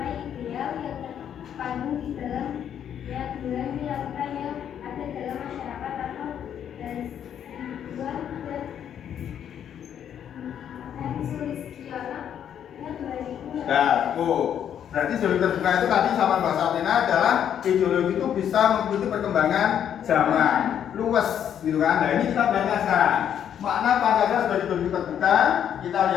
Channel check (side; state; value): right; quieter; 9.3 dB